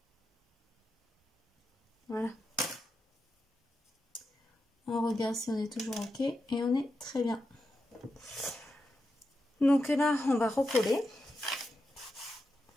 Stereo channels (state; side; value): normal; both; correlation 0.88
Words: Voilà. On regarde si on est toujours ok et on est très bien. Donc là, on va recoller.